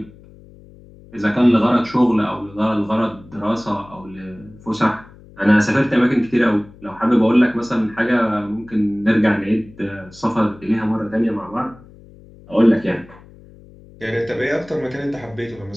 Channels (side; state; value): left; noise; hum, 23 dB below the sound